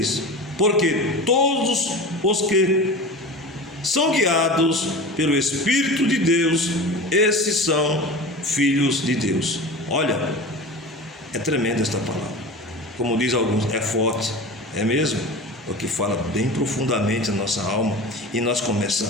Porque todos os que são guiados pelo Espírito de Deus, esses são filhos de Deus. Olha, é tremenda esta palavra. Como diz alguns, é forte, é mesmo? Porque fala bem profundamente na nossa alma e nós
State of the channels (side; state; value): both; normal; correlation 0.32